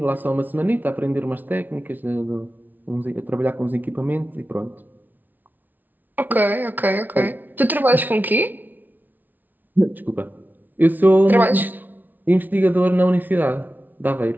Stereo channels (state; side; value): late; left; 0.084 ms